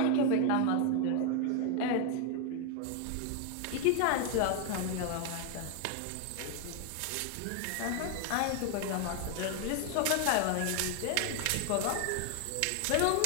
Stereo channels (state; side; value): different; both; correlation 0.01